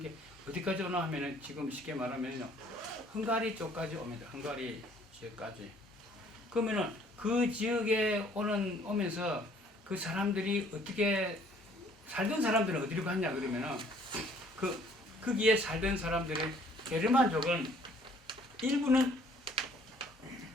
게 어디까지 오나 하면은 지금 쉽게 말하면요. 헝가리 쪽까지 옵니다. 헝가리 지역까지. 그러면은 그 지역에 오면서 그 사람들이 어떻게 살던 사람들은 어디로 갔냐 그러면은 거기에 살던 사람들의 게르만족은 일부는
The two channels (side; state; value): both; normal; correlation 0.59